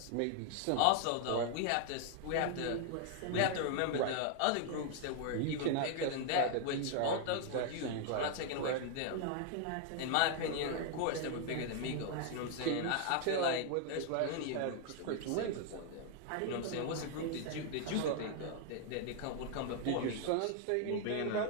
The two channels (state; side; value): different; both; correlation 0.00